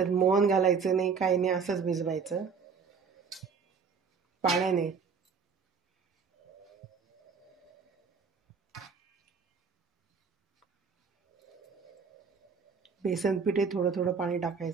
मोहन घालायचं नाही, काही नाही, असंच भिजवायचं पाण्याने। बेसन पिठे थोडं थोडं पाणी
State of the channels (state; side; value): quieter; left; 5.7 dB